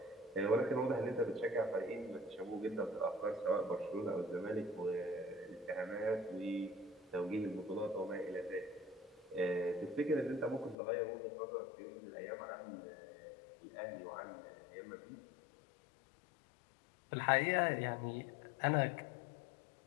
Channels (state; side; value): drops out; right; at 10.8 s